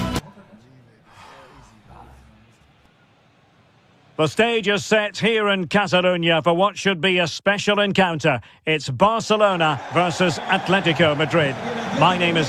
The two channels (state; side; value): identical; both; correlation 1.00